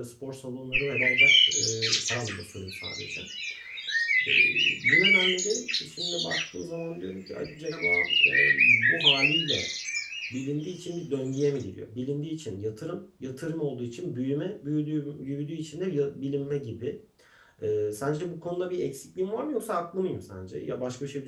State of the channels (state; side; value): identical; both; correlation 1.00